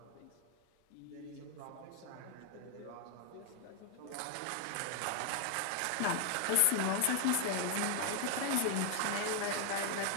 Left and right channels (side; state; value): both; different; correlation 0.00